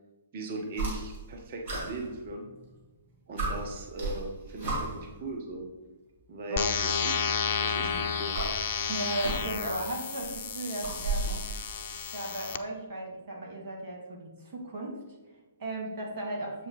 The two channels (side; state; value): both; inverted; correlation -0.39